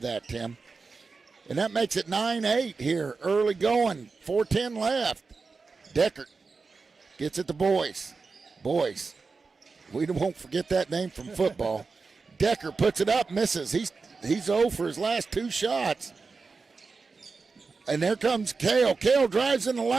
that, Tim. And that makes it 9-8 here. Early going. 4:10 left. Deckard gets it to Boyce. Boyce. We won't forget that name from football. Decker puts it up, misses. He's 0 for his last 2 shots. And there comes Kale. Kale drives in the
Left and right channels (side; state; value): left; quieter; 4.4 dB